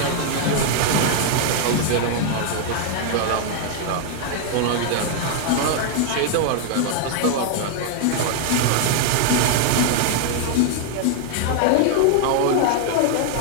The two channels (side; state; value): both; different; correlation 0.00